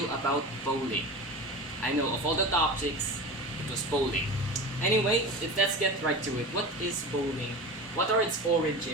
about bowling. I know, of all the topics, it was bowling. Anyway, let's get right to it. What is bowling? What are its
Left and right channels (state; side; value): normal; both; correlation 0.30